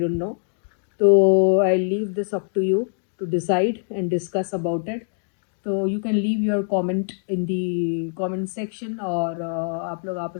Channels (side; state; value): right; silent; digital silence